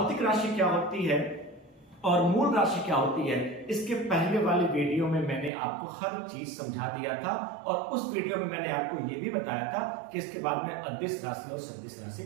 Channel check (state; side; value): drops out; left; at 5.5 s